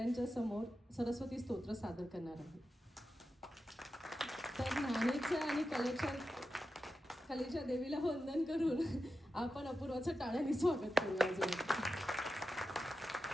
समोर सरस्वती स्तोत्र सादर करणार आहे. तर ज्ञानेच्या आणि कलेच्या देवीला वंदन करून आपण अपूर्वाचं टाळ्याने स्वागत करूया.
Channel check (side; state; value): both; normal; correlation 0.91